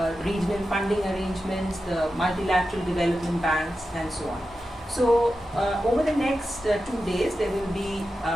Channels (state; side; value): normal; both; correlation 0.91